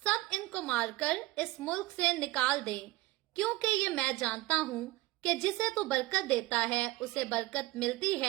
इनको मारकर इस मुल्क से निकाल दें, क्योंकि ये मैं जानता हूं कि जिसे तू बरकत देता है उसे बरकत मिलती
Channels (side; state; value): left; quieter; 19.5 dB